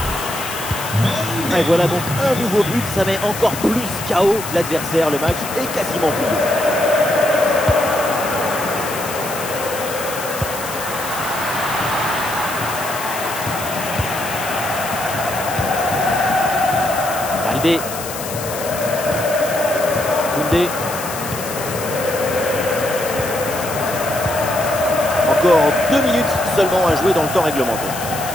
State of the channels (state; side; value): noise; left; hiss, 9 dB below the sound